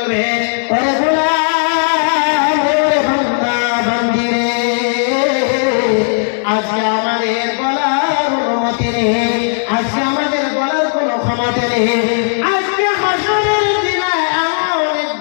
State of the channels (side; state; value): right; silent; digital silence